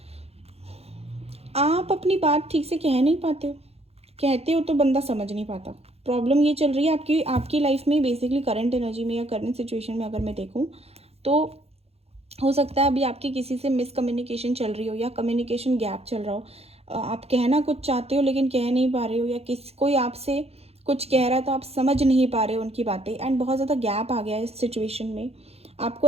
आप अपनी बात ठीक से कह नहीं पाते हो, कहते हो तो बंदा समझ नहीं पाता। प्रॉब्लम ये चल रही है आपकी आपकी लाइफ में, बेसिकली करंट एनर्जी में या करंट सिचुएशन में अगर मैं देखूँ तो हो सकता है अभी आपकी किसी से मिसकम्युनिकेशन चल रही हो या कम्युनिकेशन गैप चल रहा हो। आप कहना कुछ चाहते हो लेकिन कह नहीं पा रहे हो, या कोई आपसे कुछ कह रहा है तो आप समझ नहीं पा रहे हो उनकी बातें, एंड बहुत ज़्यादा गैप आ गया है इस सिचुएशन में। आपको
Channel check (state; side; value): late; left; 0.29 ms